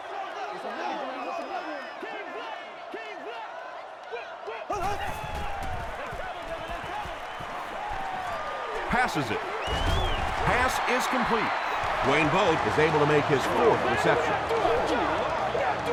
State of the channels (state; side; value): identical; both; correlation 1.00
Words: Passes it. Pass is complete. Wayne Boat is able to make his 4th reception.